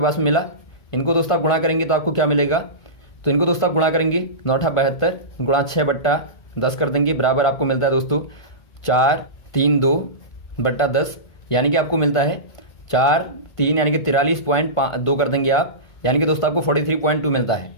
में मिला। इनको दोस्तों आप गुणा करेंगे तो आपको क्या मिलेगा, तो इनको दोस्तों आप गुणा करेंगे 9×8 = 72 गुणा 6/10 कर देंगे, बराबर आपको मिलता है दोस्तों 432/10, यानी कि आपको मिलता है 4×3 यानी कि 43.2 कर देंगे आप, यानी कि दोस्तों आपको 43.2 मिलता है।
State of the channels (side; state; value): right; late; 1.5 ms